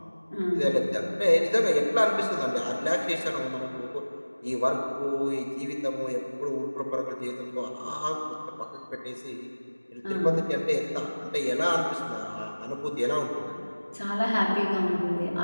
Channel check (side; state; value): both; inverted; correlation -1.00